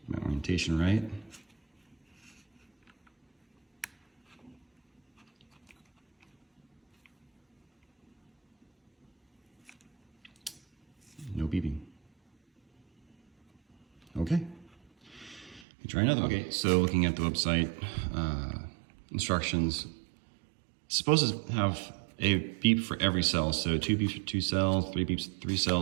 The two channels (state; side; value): drops out; left; at 15.7 s